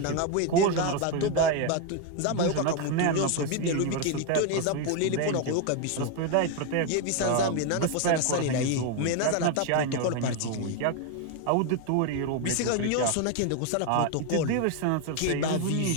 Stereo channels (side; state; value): both; different; correlation 0.01